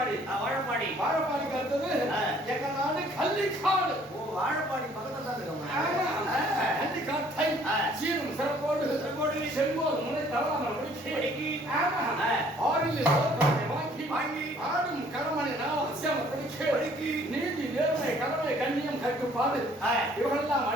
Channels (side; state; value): both; normal; correlation 0.59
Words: வாழப்பாடிக்கு அடுத்தது எங்க நாடு கள்ளிக்காடு. வாழப்பாடி பக்கத்துல தான் இருக்கும். ஆமா, கள்ளிக்காட்டை சீரும் சிறப்போடு செல்வோர் முனை தவறாமல் முடிக்கி. ஆமா, ஆறில் வாங்கி ஆடும் கடமனை அவசியம் படிக்கி நீதி நேர்மை கடமை கண்ணியம் கட்டுப்பாடு இவரெல்லாம்